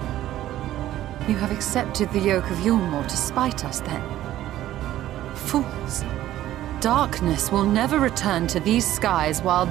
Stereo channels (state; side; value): quieter; left; 13.6 dB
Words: You have accepted the yoke of Yulmore to spite us, then? Fools. Darkness will never return to these skies while